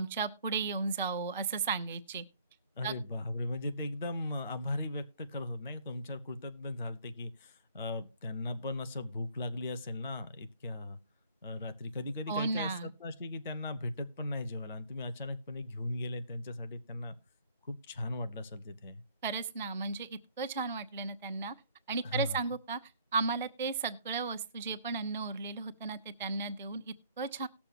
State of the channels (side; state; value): both; inverted; correlation -0.59